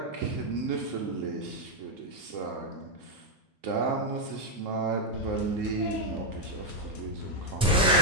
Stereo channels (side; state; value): both; normal; correlation 0.00